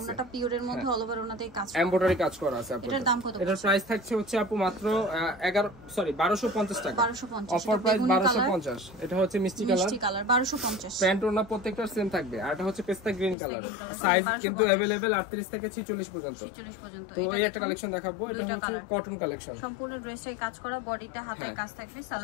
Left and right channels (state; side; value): drops out; right; at 13.4 s